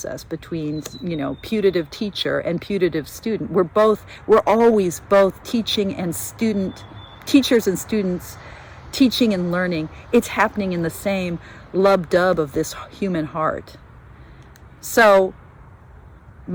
between, putative teacher and putative student. We're always both teaching and student, teachers and students, teaching and learning. It's happening in the same lub-dub of this human heart. So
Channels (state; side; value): identical; both; correlation 1.00